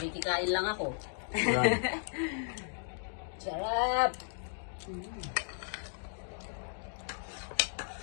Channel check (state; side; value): silent; right; digital silence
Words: lang ako. Ayan. Sarap!